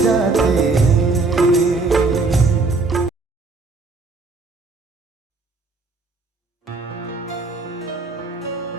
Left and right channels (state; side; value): quieter; left; 3.7 dB